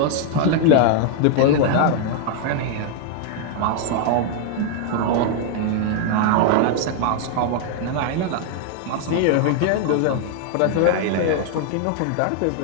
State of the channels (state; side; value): different; both; correlation 0.00